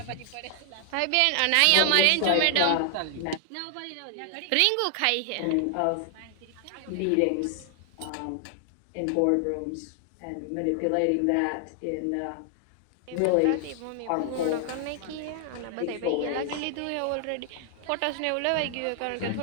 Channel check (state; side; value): different; both; correlation 0.00